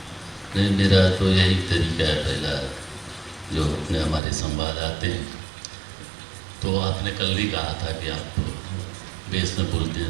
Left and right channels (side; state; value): left; drops out; at 4.2 s